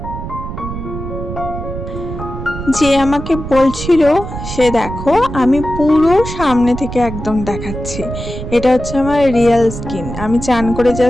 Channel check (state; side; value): noise; right; rumble, 8 dB below the sound